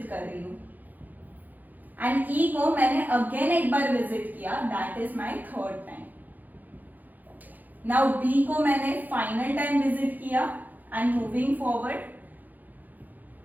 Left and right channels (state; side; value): late; left; 0.083 ms